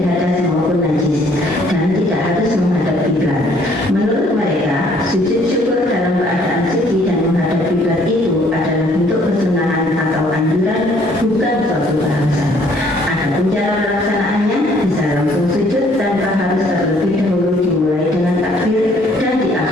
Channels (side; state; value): both; normal; correlation 0.62